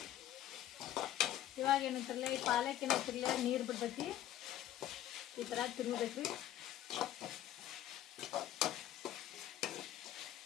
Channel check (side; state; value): right; quieter; 12.4 dB